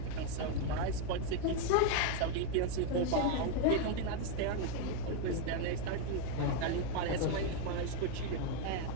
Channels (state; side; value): different; both; correlation 0.01